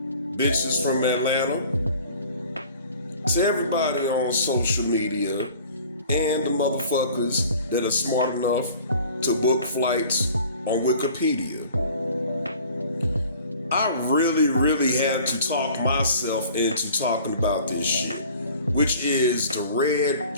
bitches from Atlanta, to everybody on social media and the motherfuckers that are smart enough to book flights on Wikipedia. I really had to talk myself into talking about this shit, which is the Red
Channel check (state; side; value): inverted; both; correlation -0.48